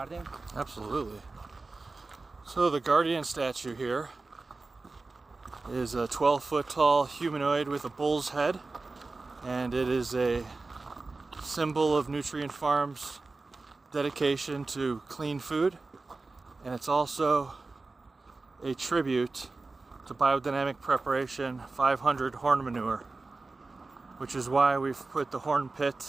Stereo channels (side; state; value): left; quieter; 3.6 dB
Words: Absolutely. So the guardian statue here is a 12-foot tall humanoid with a bull's head, and it is a symbol of Nutrient Farm's dedication to clean food, and it's also a tribute to Biodynamic Preparation 500 horn manure, which is why we've put the horn